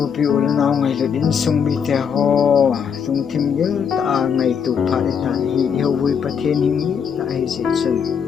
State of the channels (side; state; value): right; quieter; 7.1 dB